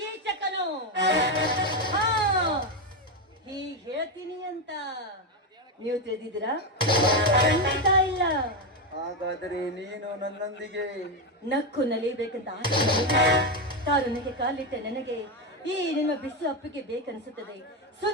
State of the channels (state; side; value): normal; both; correlation 0.10